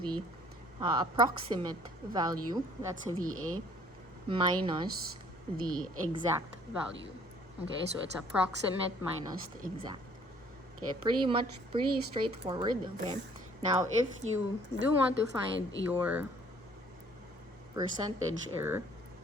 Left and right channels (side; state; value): both; normal; correlation 0.58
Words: approximate value, that's a VA, minus the exact value. Okay, so it's approximate minus the exact. Okay, pretty straightforward. Okay, now if you do want to find your percentage error,